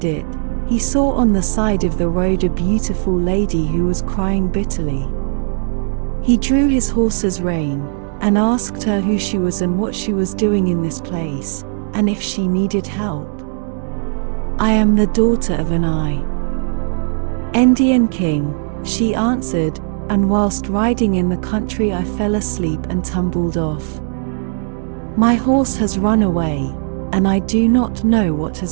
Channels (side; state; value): left; silent; digital silence